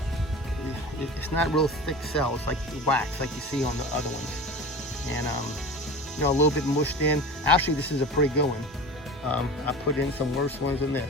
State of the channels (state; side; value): normal; both; correlation 0.34